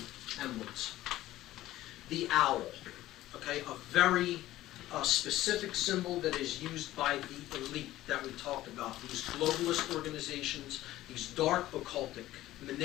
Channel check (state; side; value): quieter; right; 15.3 dB